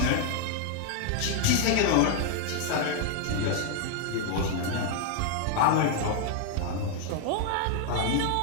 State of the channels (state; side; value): different; both; correlation 0.00